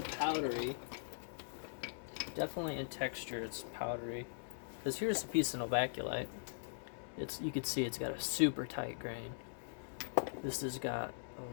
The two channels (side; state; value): right; silent; digital silence